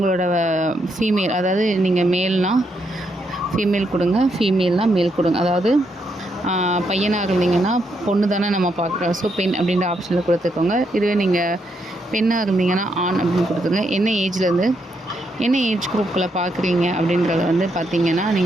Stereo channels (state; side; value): normal; both; correlation 0.78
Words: ஃபீமேல், அதாவது நீங்கள் மேல்னால் ஃபீமேல் கொடுங்க, ஃபீமேல்னால் மேல் கொடுங்க. அதாவது பையனாக இருந்தீங்கன்னா பொண்ணு தானே நம்ம பார்க்குறோம், ஸோ பெண் அப்படின்ற ஆப்ஷனில் கொடுத்துக்கோங்க. இதுவே நீங்கள் பெண்ணாக இருந்தீங்கன்னா ஆண் அப்படின்னு கொடுத்துங்க. என்ன ஏஜ்லேருந்து என்ன ஏஜ் குரூப்பில் பார்க்குறீங்க அப்படின்றத வந்து பார்த்தீங்கன்னா